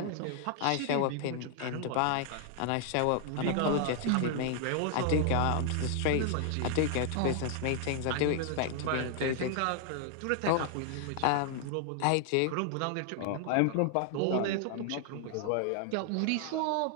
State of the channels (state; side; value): different; both; correlation 0.00